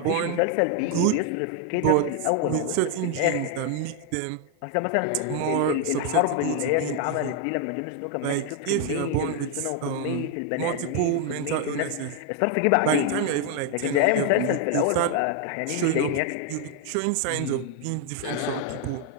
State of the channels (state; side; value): different; both; correlation 0.00